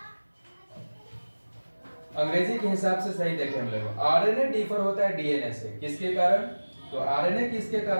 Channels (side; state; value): both; inverted; correlation -1.00